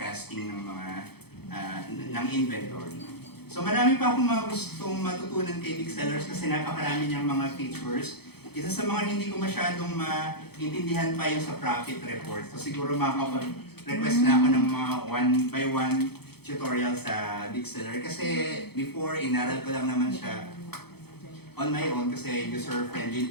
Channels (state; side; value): late; right; 0.97 ms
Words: ng mga ng inventory. So marami pa akong mga gustong matutunan kay Big Sellers kasi napakarami niyang mga features. Isa sa mga hindi ko masyadong maintindihan pa yung sa profit report. So siguro makakapag-request na ako ng mga 1-by-1 tutorial sa Big Seller. Kasi before, inaral ko lang naman siya on my own kasi